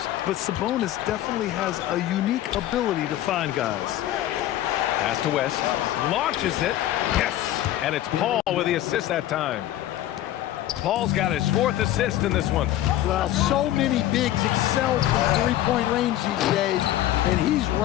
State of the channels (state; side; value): quieter; right; 13.4 dB